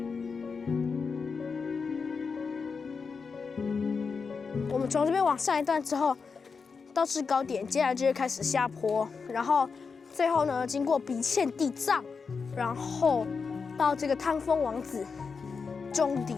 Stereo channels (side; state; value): right; quieter; 5.2 dB